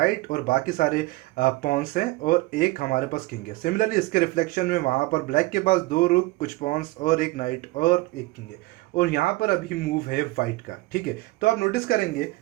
और बाकी सारे पॉन्स हैं और एक हमारे पास किंग है। सिमिलरली इसके रिफ्लेक्शन में वहाँ पर ब्लैक के पास 2 रुक, कुछ पॉन्स और एक नाइट और एक किंग है, और यहाँ पर अभी मूव है व्हाइट का, ठीक है। तो आप नोटिस करेंगे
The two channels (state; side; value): quieter; left; 20.6 dB